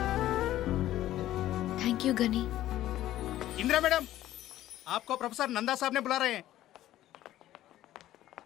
Thank you Gani. Indira madam, आपको प्रोफेसर नंदा साहब ने बुला रहे हैं.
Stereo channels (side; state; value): right; quieter; 13.8 dB